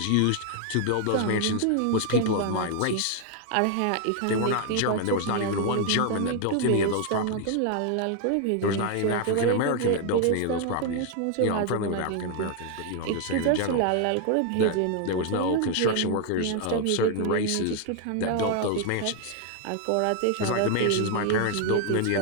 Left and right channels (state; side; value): different; both; correlation 0.00